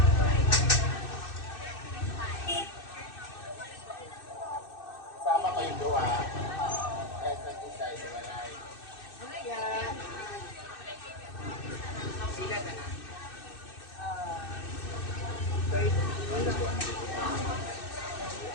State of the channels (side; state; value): right; late; 2.6 ms